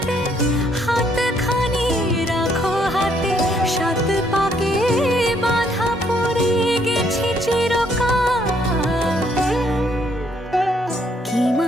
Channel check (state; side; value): normal; both; correlation 0.69